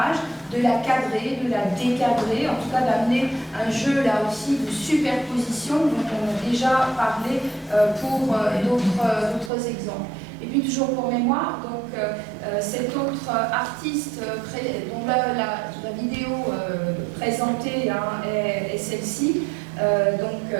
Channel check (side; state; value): left; drops out; at 9.5 s